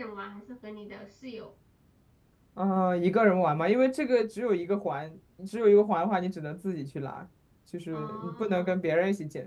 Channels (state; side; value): identical; both; correlation 1.00